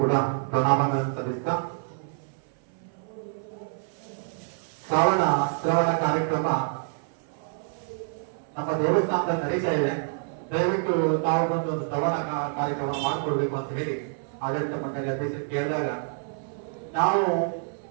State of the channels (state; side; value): silent; left; 57 dB below the other